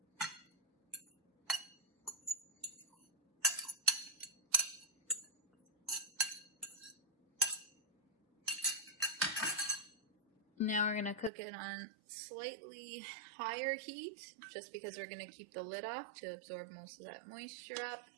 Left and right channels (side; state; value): left; drops out; at 11.3 s